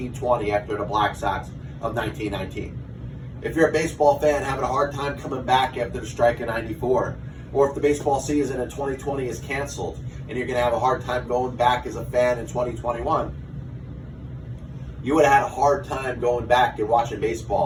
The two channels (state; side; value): identical; both; correlation 1.00